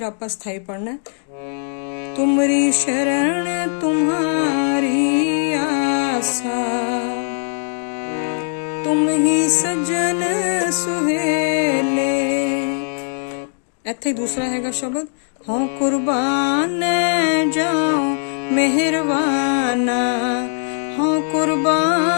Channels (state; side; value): silent; right; 66 dB below the other